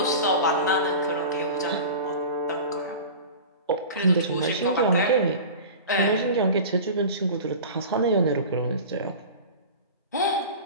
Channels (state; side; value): inverted; both; correlation -0.35